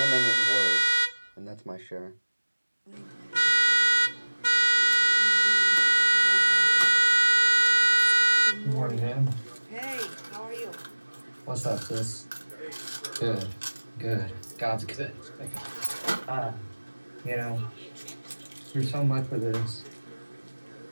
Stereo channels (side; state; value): both; inverted; correlation -1.00